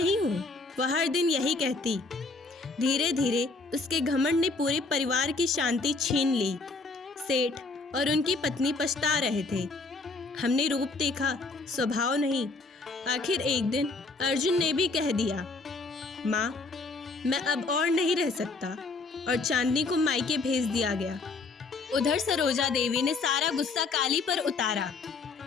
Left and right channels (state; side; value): quieter; right; 3.8 dB